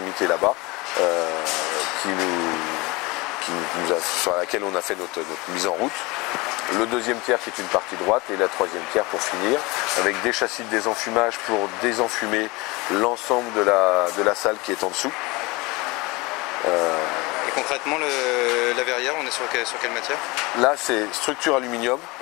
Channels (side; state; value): right; quieter; 24.2 dB